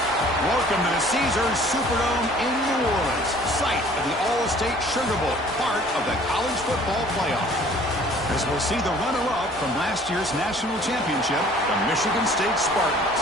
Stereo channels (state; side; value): normal; both; correlation 0.53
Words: Welcome to the Caesars Superdome in New Orleans, site of the All-State Sugar Bowl, part of the college football playoff. As we'll see the runner-up from last year's national championship, the Michigan State Spartans,